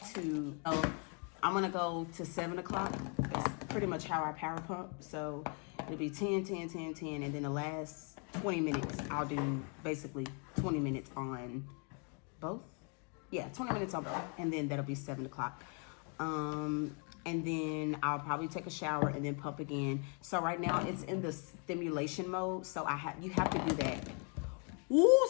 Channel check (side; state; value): right; quieter; 37.8 dB